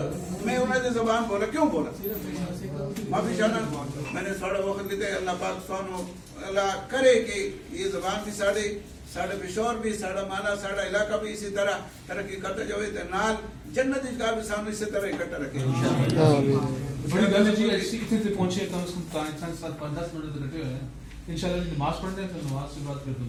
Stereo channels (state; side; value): identical; both; correlation 1.00